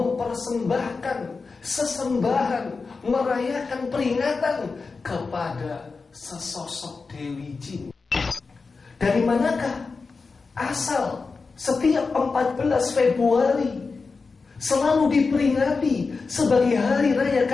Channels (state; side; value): quieter; right; 4.4 dB